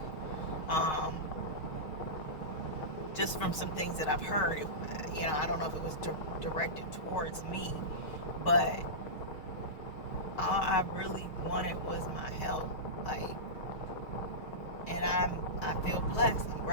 Just from some things that I've heard, I don't know if it was directed towards me, but all I really wanted was my health. And I feel blessed. I'm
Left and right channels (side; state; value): right; late; 6.4 ms